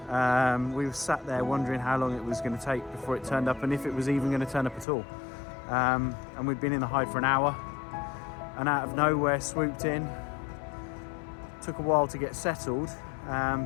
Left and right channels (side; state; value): right; drops out; at 4.9 s